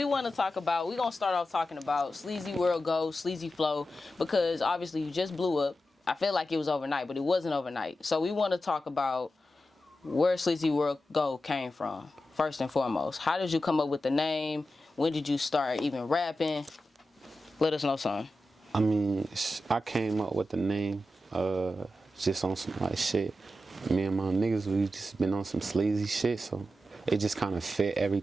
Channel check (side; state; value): both; normal; correlation 0.91